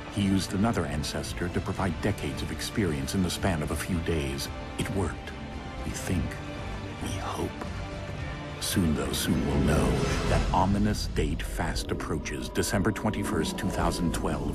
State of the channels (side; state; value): both; identical; correlation 1.00